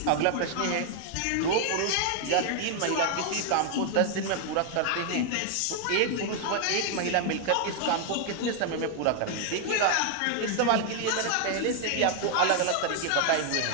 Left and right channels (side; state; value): both; different; correlation 0.00